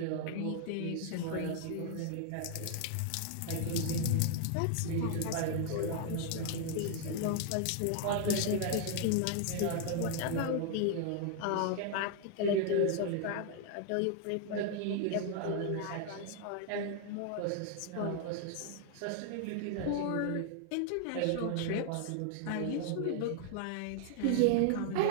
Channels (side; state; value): both; different; correlation 0.00